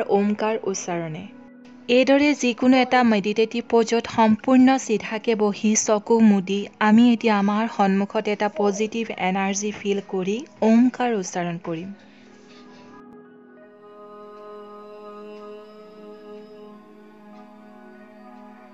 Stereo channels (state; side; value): identical; both; correlation 1.00